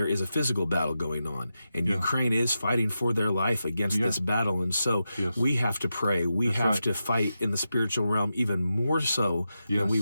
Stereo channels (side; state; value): both; inverted; correlation -0.89